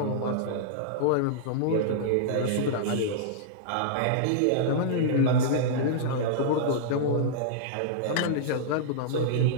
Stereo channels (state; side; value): different; both; correlation -0.02